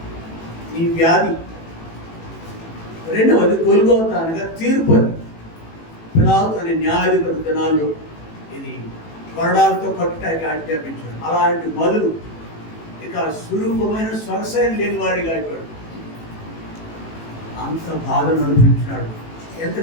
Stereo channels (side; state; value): right; late; 18 ms